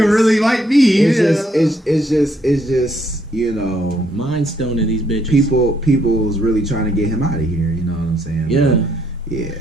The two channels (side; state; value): both; normal; correlation 0.70